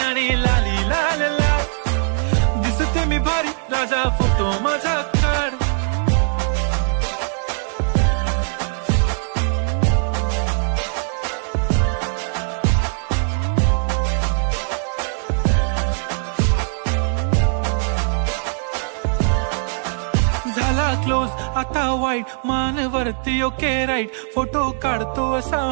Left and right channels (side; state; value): left; silent; 63 dB below the other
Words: लाली लाल लाल, दिसते मी भारी राजा फोटो माझा काढ. झाला क्लोज आता वाईट, मानवरती ओके राईट. फोटो काढतो असा